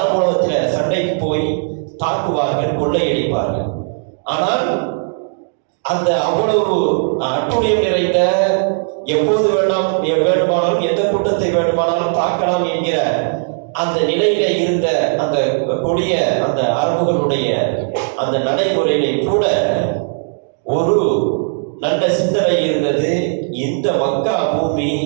சண்டைக்கு போய் தாக்குவார்கள், கொள்ளையடிப்பார்கள். ஆனால் அந்த அவ்வளவு அட்டுழியம் நிறைந்த, எப்போது வேண்டுமானாலும் எந்த கூட்டத்தை வேண்டுமானாலும் தாக்கலாம் என்கிற அந்த நிலையில இருந்த அந்த கொடிய அந்த அரபுகளுடைய அந்த நடைமுறையிலே கூட ஒரு நல்ல சிந்தனை இருந்தது. இந்த மக்கா பூமி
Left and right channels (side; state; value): left; silent; digital silence